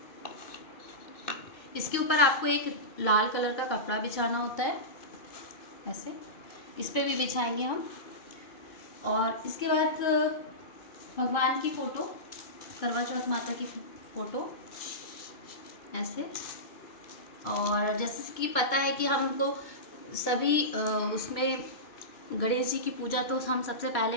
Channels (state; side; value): late; right; 2.2 ms